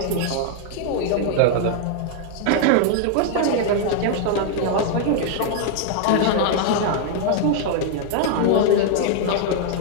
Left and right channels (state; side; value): different; both; correlation 0.00